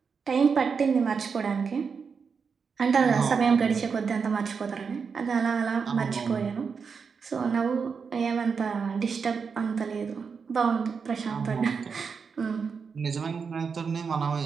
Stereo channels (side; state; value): left; quieter; 5.7 dB